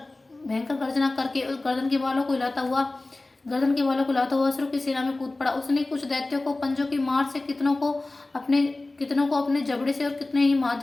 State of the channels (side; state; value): right; quieter; 3.0 dB